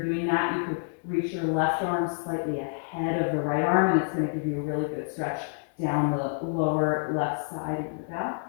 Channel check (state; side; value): silent; right; digital silence